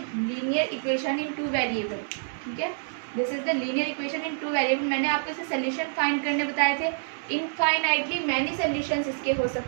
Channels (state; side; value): silent; left; 60 dB below the other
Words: linear equation in two variable, ठीक है, this is the linear equation in two variable. मैंने आपको इसे solution find करने बताए थे। इनफाइनाइटली मैनी सोल्यूशंस इसके हो